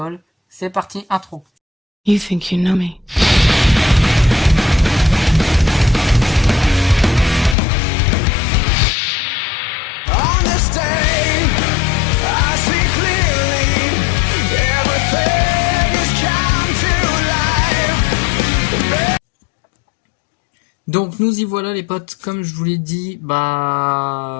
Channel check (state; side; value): drops out; right; at 7.6 s